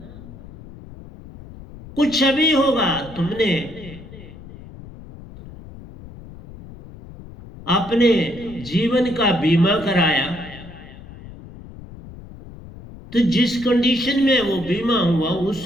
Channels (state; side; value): noise; left; rumble, 17 dB below the sound